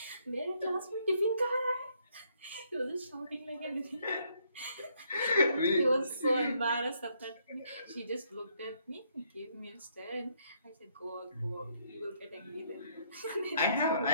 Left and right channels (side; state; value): both; inverted; correlation -0.71